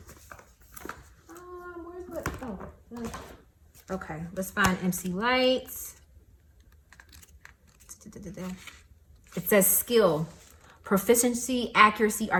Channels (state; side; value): identical; both; correlation 1.00